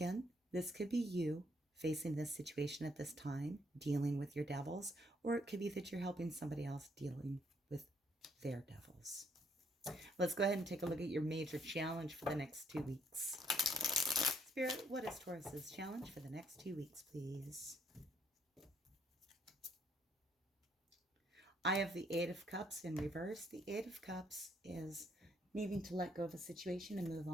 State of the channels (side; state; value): both; normal; correlation 0.68